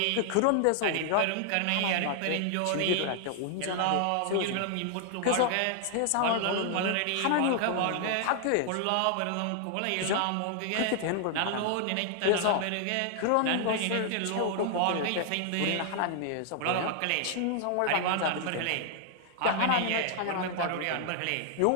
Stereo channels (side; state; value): both; different; correlation 0.00